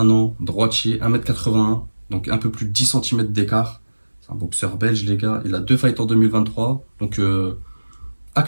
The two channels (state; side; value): inverted; both; correlation -1.00